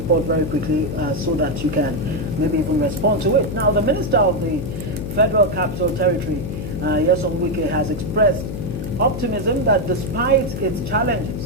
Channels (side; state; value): left; noise; hum, 6 dB below the sound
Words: very quickly so that you can maybe even respond to it. Now, the Minister of the Federal Capital Territory, Nyesom Wike, has expressed optimism that despite its